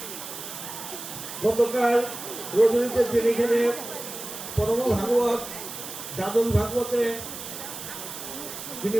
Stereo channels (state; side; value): noise; right; hiss, 9 dB below the sound